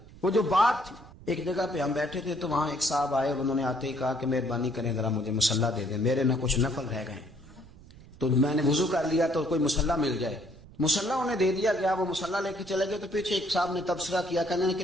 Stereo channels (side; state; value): right; noise; rumble, 21 dB below the sound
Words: وہ جو بات تھی۔ ایک جگہ پہ ہم بیٹھے تھے تو وہاں ایک صاحب آئے اور انہوں نے آتے ہی کہا کہ مہربانی کریں ذرا مجھے مصلی دے دیں، میرے نہ کچھ نفل رہ گئے۔ تو میں نے وضو کر لیا تو کوئی مصلی مل جائے، مصلی انہیں دے دیا گیا، وہ مصلی لے کے چلے گئے تو پیچھے ایک صاحب نے تبصرہ کیا، کہنے نے